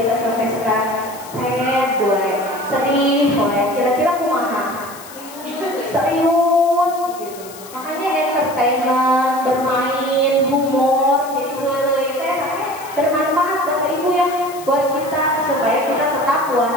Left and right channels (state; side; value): noise; left; hiss, 17 dB below the sound